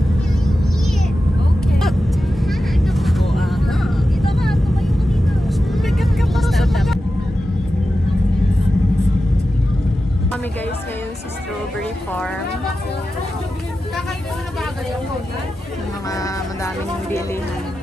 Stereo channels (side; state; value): both; normal; correlation 0.92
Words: Okay. Oh, dito ka. Tumayo ka dito. Bigat ka para sa taga. Kami guys ngayon sa strawberry farm. Yung mga madaming bilihan.